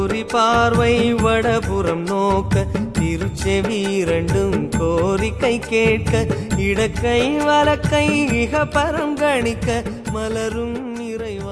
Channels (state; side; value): identical; both; correlation 1.00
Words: பார்வை வடபுறம் நோக்க திருச்செவி இரண்டும் கோரிக்கை கேட்க இடக்கை வலக்கை இக பரம் கணிக்க மலரும்